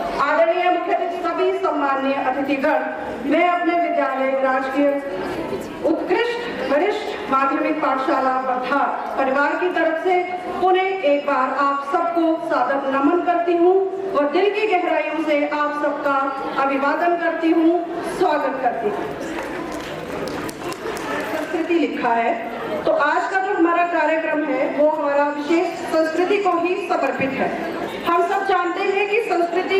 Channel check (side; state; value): both; identical; correlation 1.00